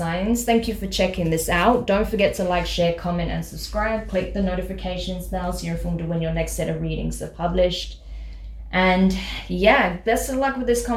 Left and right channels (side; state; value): both; identical; correlation 1.00